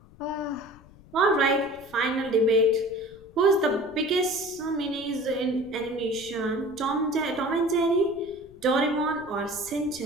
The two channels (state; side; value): noise; left; rumble, 23 dB below the sound